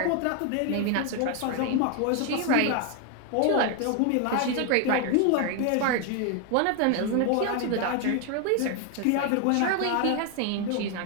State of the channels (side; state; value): both; different; correlation 0.01